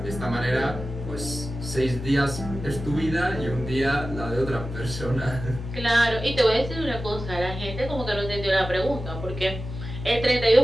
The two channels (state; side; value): noise; left; hum, 8 dB below the sound